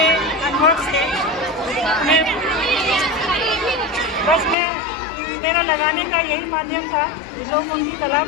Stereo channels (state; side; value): drops out; right; at 4.5 s